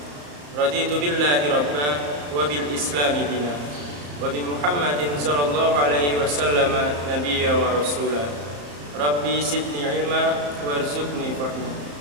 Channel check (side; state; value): left; late; 34 ms